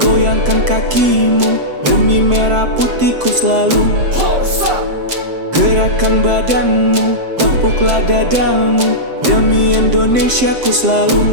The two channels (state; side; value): late; left; 7.6 ms